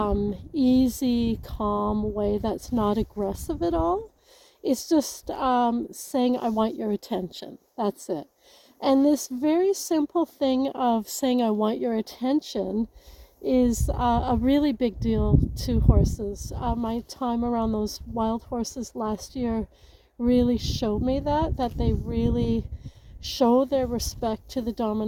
easy, calm way that's not aggressive at all. It's just saying, I want your attention. That's it. And this very simple thing of saying, I want your attention is a really big deal to horses. My time around those wild horses last year really showed me that they really show their respect to the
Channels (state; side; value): identical; both; correlation 1.00